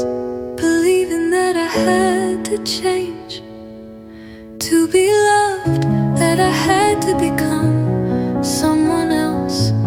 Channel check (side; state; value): both; identical; correlation 1.00